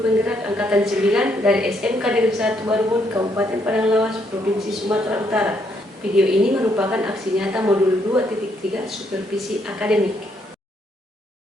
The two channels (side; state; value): both; normal; correlation 0.73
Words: penggerak Angkatan 9 dari SMK Negeri 1 Barubun, Kabupaten Padang Lawas, Provinsi Sumatera Utara. Video ini merupakan aksi nyata modul 2.3 supervisi akademik.